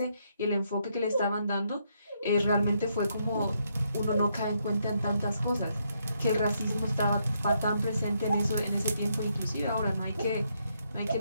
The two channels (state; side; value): inverted; both; correlation -0.76